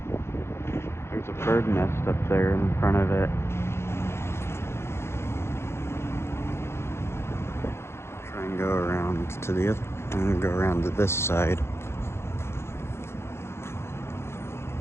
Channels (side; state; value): right; late; 0.12 ms